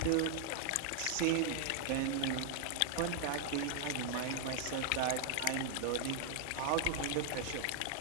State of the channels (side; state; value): both; different; correlation 0.00